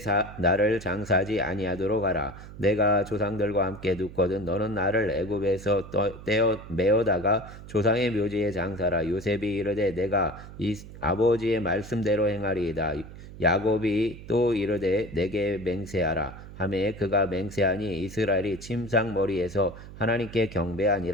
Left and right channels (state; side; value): noise; right; hum, 15 dB below the sound